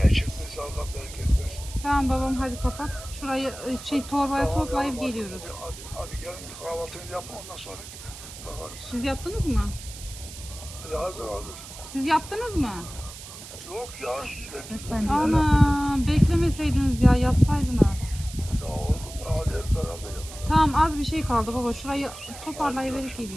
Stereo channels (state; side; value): noise; right; hiss, 14 dB below the sound